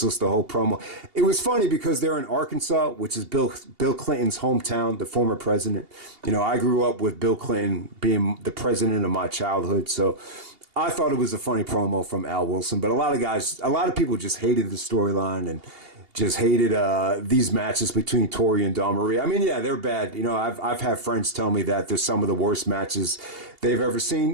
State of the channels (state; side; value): late; left; 2.8 ms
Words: the whole promo. It was funny because they're in Arkansas, which is Bill Clinton's hometown, the former president. I grew up with Bill Clinton being the president of my childhood. So I thought it was a funny promo from Al Wilson. But a lot of people just hated the storyline and just hated these matches between Torrie and Dawn Marie. I mean, yeah, they're bad. I've had friends tell me that they're some of the worst matches they've ever